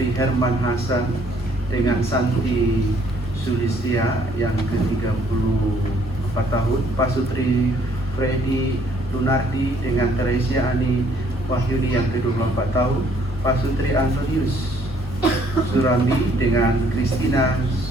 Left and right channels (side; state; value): both; normal; correlation 0.63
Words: Herman Hasan dengan Santi Sulistia yang ke-34 tahun, Pak Sutri Freddy Lunardi dengan Teresia Ani Wahyuni yang ke-24 tahun, Pak Sutri Antonius Surami dengan Kristina